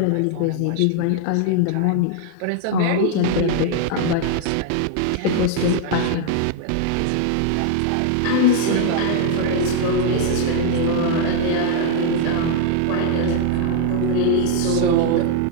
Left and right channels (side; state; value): both; different; correlation 0.00